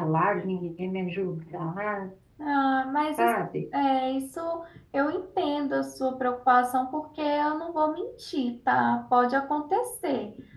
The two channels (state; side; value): identical; both; correlation 1.00